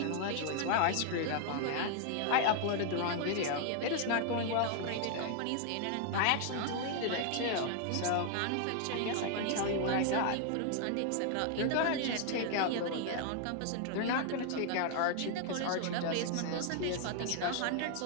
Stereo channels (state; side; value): different; both; correlation 0.00